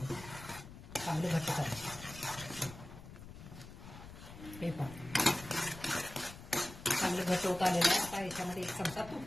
चांगलं घट्ट करायचं. हे पहा, चांगलं घट्ट होत आलेलं आहे. आता ह्याच्यामध्ये 1 चमचा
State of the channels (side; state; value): left; noise; rumble, 14 dB below the sound